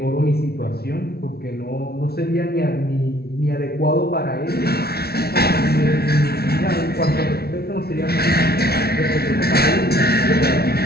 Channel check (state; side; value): late; right; 0.45 ms